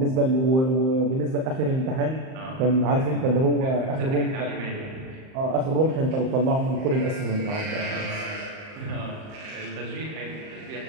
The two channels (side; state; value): left; late; 38 ms